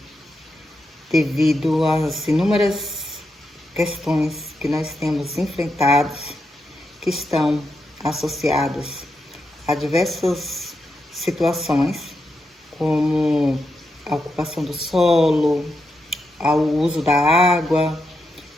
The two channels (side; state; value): both; normal; correlation 0.85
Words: devido às inúmeras questões que nós temos enfrentados, que estão associadas a diversas situações, como a ocupação do solo, ao uso da água